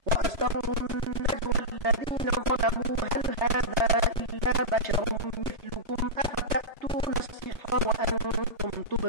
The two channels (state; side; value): late; left; 3.0 ms